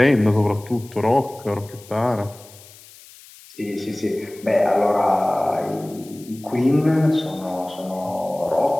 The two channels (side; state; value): left; noise; hiss, 22 dB below the sound